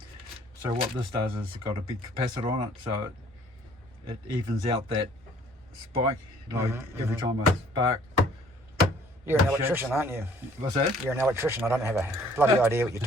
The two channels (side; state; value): both; normal; correlation 0.57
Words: So what this does is it's got a big capacitor on it, so it evens out that spike. Like every time I spark. You're an electrician, aren't you? What's that? You're an electrician. I don't have a bloody idea what you're